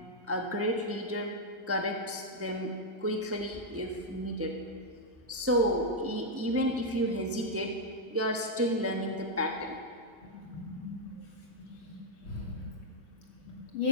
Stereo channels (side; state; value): both; normal; correlation -0.02